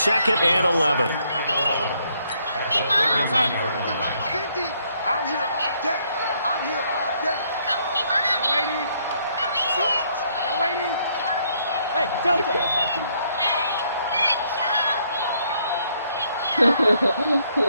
and 11. I'm here all day. I'm here all day. Young lady. Switch. Young lady. Hey, Delta.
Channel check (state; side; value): inverted; both; correlation -0.70